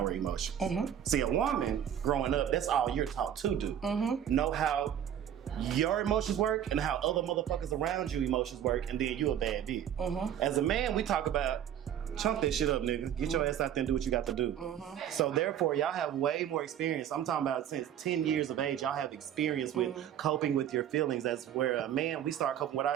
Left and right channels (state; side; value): quieter; left; 9.9 dB